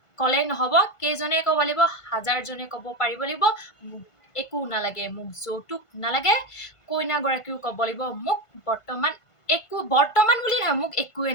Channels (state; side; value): late; right; 1.5 ms